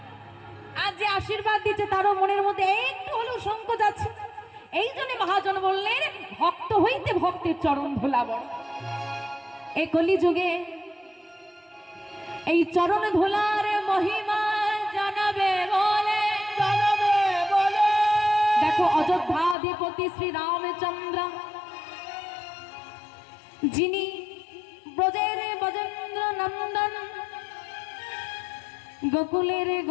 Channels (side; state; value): right; drops out; at 19.6 s